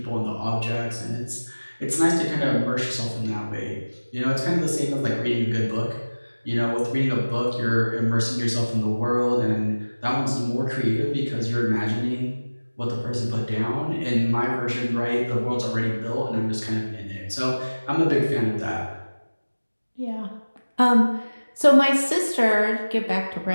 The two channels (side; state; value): both; inverted; correlation -1.00